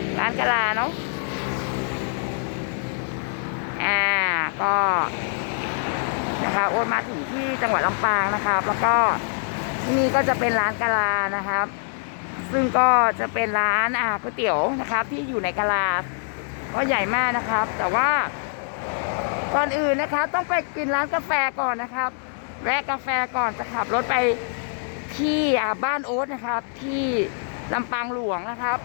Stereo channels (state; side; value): silent; right; 62 dB below the other